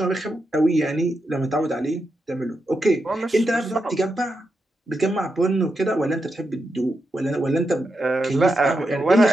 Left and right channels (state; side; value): normal; both; correlation 0.86